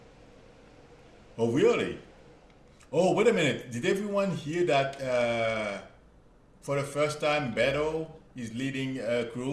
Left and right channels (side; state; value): both; identical; correlation 1.00